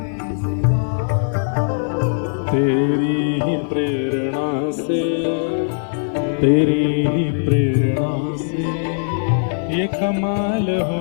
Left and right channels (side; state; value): right; silent; 55 dB below the other